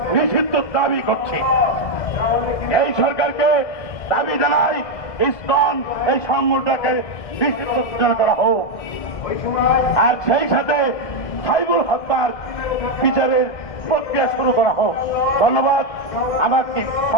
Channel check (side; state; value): right; late; 1.6 ms